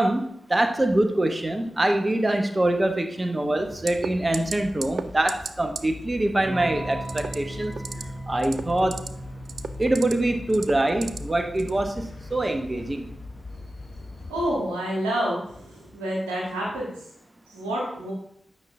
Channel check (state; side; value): normal; both; correlation 0.95